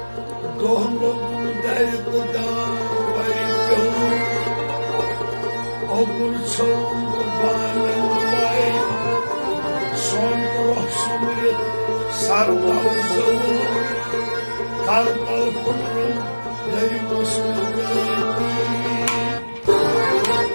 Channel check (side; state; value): both; inverted; correlation -1.00